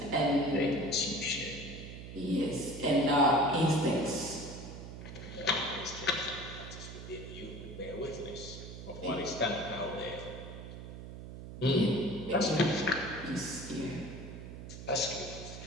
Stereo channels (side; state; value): right; noise; hum, 11 dB below the sound